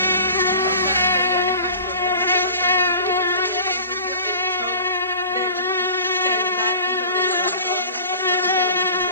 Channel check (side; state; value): both; inverted; correlation -0.41